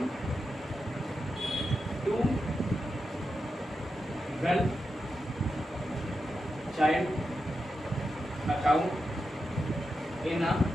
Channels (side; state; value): both; normal; correlation 0.88